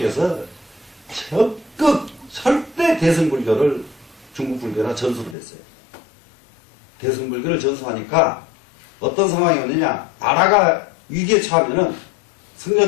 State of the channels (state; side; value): drops out; right; at 5.4 s